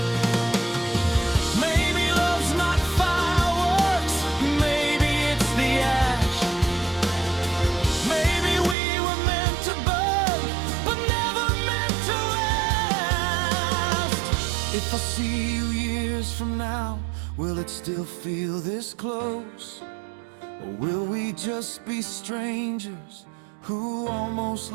Maybe love's not fireworks, maybe it's the ash. Maybe we were meant to burn, but never meant to last. If I see you years from now, will it still feel this close? Or will we just be strangers who almost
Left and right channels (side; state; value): left; drops out; at 8.8 s